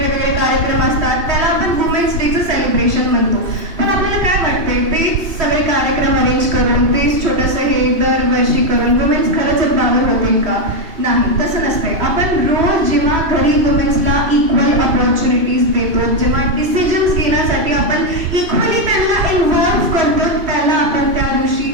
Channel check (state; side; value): late; left; 2.7 ms